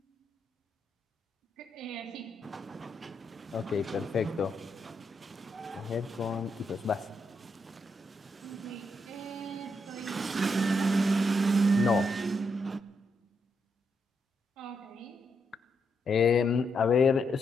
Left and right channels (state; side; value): normal; both; correlation 0.80